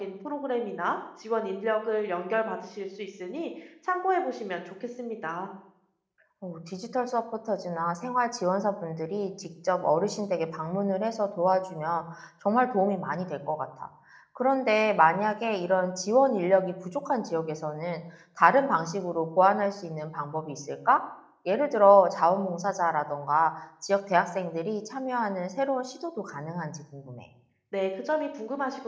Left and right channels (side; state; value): both; identical; correlation 1.00